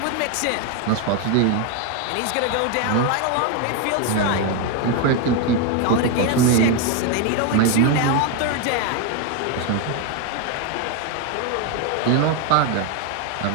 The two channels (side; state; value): both; different; correlation 0.01